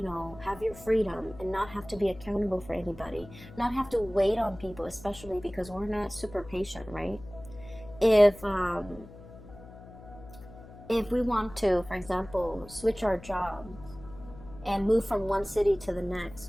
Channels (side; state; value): left; noise; hum, 18 dB below the sound